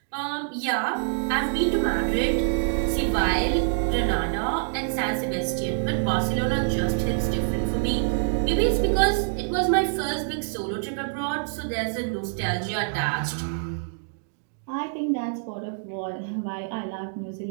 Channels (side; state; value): left; silent; digital silence